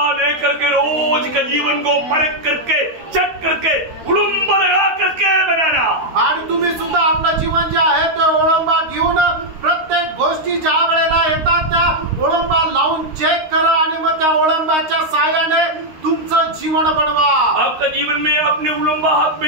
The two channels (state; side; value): late; left; 13 ms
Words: लेकर के रोज का जीवन को परख करके चेक करके उलंबा लगा करके बनाना। आणि तुम्ही सुद्धा आपलं जीवन जे आहे ते ओळंबा घेऊन प्रत्येक गोष्टी ज्या वेळेला येतात त्या ओळंबा लावून चेक करा आणि मग त्या ओळंबाच्या साहाय्याने तुमचं जीवन बनवा। आपका जीवन में आपने उलंबा हाथ में